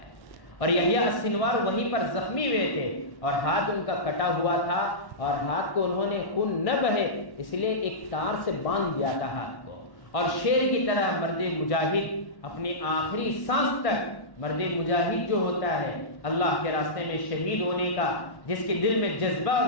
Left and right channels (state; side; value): late; right; 1.1 ms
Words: اور یحییٰ السنوار وہیں پر زخمی ہوئے تھے اور ہاتھ ان کا کٹا ہوا تھا، اور ہاتھ کو انہوں نے خون نہ بہے اس لیے ایک تار سے باندھ دیا تھا ہاتھ کو. اور شیر کی طرح مرد مجاہد اپنی آخری سانس تک، مرد مجاہد جو ہوتا ہے اللہ کے راستے میں شہید ہونے کا، جس کے دل میں جذبہ اور